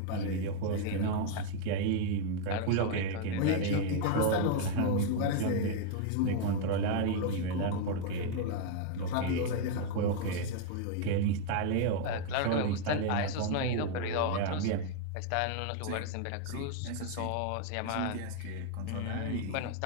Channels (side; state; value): both; different; correlation 0.00